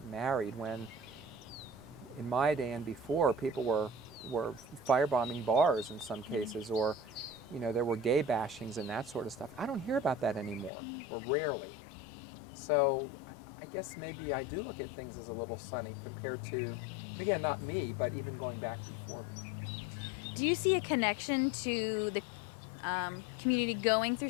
married when in my day and before people were firebombing bars in some cases, or there were gay bashings and that sort of stuff. I don't hear about that anymore, or rarely. So I guess maybe I do look at things as a little sunny compared to, and again, not me, but even going back before me. Do you see a connection to the community going through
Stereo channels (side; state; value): right; drops out; at 10.7 s